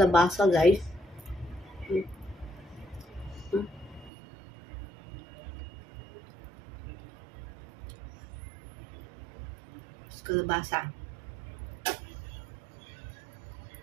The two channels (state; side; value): drops out; left; at 4.1 s